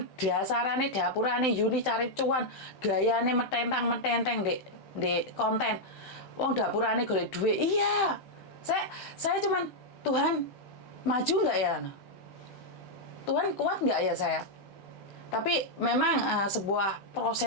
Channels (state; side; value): late; right; 16 ms